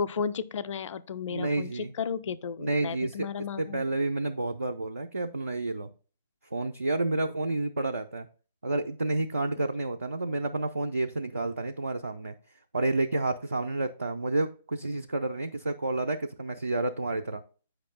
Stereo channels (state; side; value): inverted; both; correlation -0.82